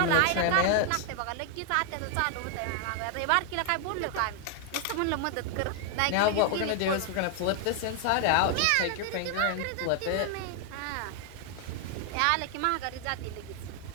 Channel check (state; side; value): different; both; correlation 0.00